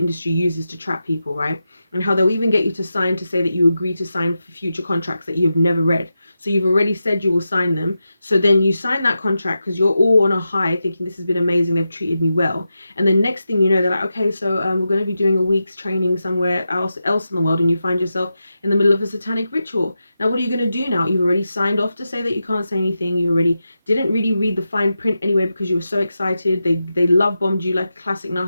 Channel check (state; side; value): inverted; both; correlation -0.89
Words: industry uses to trap people, right? And how they'll even get you to sign to say that you agree to sign for future contracts that you've never read. So you've already said you will sign them, so then you sign that contract because you're all on a high thinking this has been amazing, they've treated me well. And the next thing you know, they're like, okay, so we're going to be doing a week's training somewhere else in the world, and you find yourself in the middle of a satanic ritual. Now, what are you going to do now? You've already signed off to say that you can't say anything. You already didn't really read the fine print anyway because you were so excited. They love bombed you like a classic